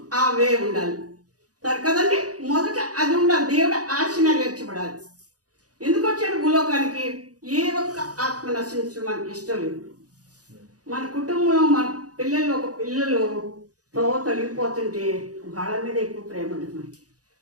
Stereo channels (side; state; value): left; late; 0.67 ms